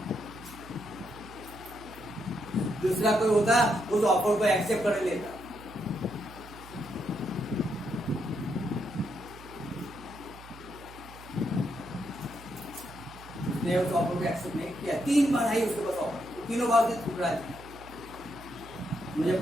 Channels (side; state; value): right; noise; hum, 18 dB below the sound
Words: दूसरा कोई होता उस ऑफर को एक्सेप्ट कर लेता, उसने उस ऑफर को एक्सेप्ट नहीं किया। 3 बार आई उसके पास ऑफर, तीनों बार से ठुकरा दिया। मुझे